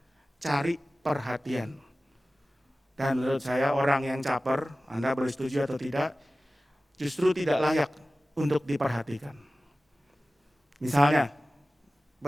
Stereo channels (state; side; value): normal; both; correlation 0.96